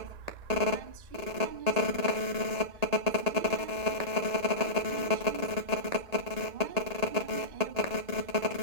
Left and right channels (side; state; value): left; late; 1.8 ms